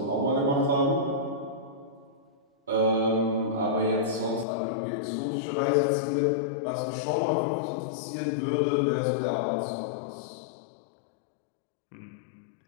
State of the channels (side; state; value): right; drops out; at 4.5 s